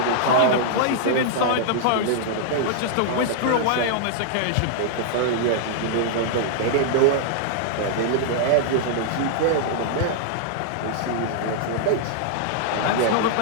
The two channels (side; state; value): both; different; correlation -0.01